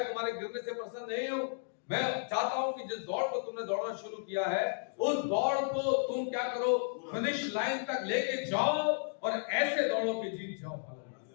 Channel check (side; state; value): right; silent; digital silence